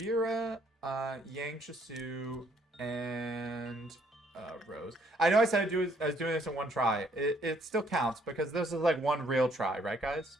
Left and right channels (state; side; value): normal; both; correlation 0.66